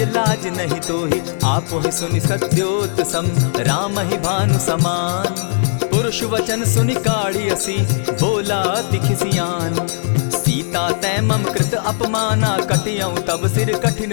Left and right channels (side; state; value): right; silent; digital silence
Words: लाज नहीं तोही। आप ही सुनि सत्योत सम, राम ही भानु समान। पुरुष वचन सुनि काढ़ी असी, बोला अति खिसियान। सीता तै मम कृत अपमाना, कटियऊं तब सिर कठिन